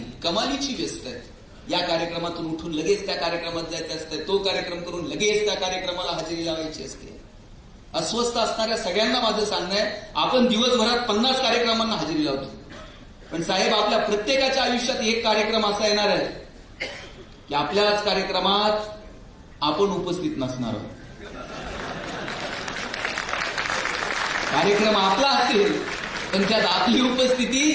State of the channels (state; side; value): identical; both; correlation 1.00